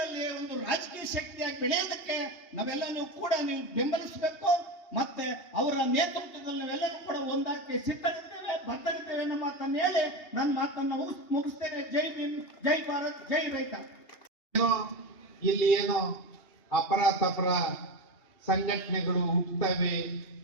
ಒಂದು ರಾಜಕೀಯ ಶಕ್ತಿಯಾಗಿ ಬೆಳೆಯೋದಕ್ಕೆ ನಾವೆಲ್ಲರೂ ಕೂಡ ನೀವು ಬೆಂಬಲಿಸಬೇಕು. ಮತ್ತೆ ಅವರ ನೇತೃತ್ವದಲ್ಲಿ ನಾವೆಲ್ಲರೂ ಕೂಡ ಒಂದಾಗಿ ಸಿದ್ಧರಿದ್ದೇವೆ, ಬದ್ಧರಿದ್ದೇವೆ ಅನ್ನೋ ಮಾತನ್ನು ಹೇಳಿ ನನ್ನ ಮಾತನ್ನ ಮುಗಿಸ್ತೇನೆ. ಜೈ ಭೀಮ್, ಜೈ ಭಾರತ್, ಜೈ ರೈತ. ಇಲ್ಲಿ ಏನೋ ಅಪರ ಸಂಘಟನೆಗಳು ಹುಟ್ಟುತ್ತವೆ,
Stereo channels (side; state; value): right; late; 2.8 ms